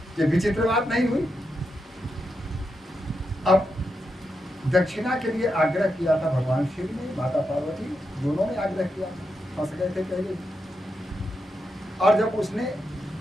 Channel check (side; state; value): both; normal; correlation 0.85